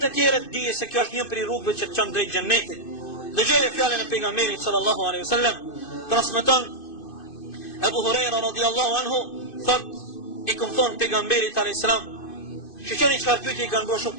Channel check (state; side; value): late; right; 2.5 ms